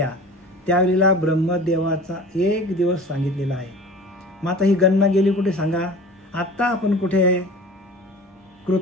त्यावेळेला ब्रह्मदेवाचा एक दिवस सांगितलेला आहे. मग आता ही गणना गेली कुठे सांगा? आत्ता आपण कुठे आहे?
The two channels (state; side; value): normal; both; correlation 0.40